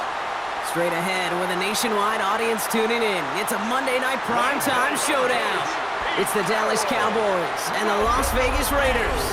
Straight ahead, with a nationwide audience tuning in, it's a Monday night primetime showdown. It's the Dallas Cowboys and the Las Vegas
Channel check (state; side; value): identical; both; correlation 1.00